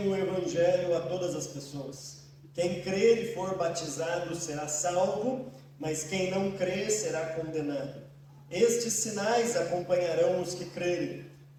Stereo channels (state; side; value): identical; both; correlation 1.00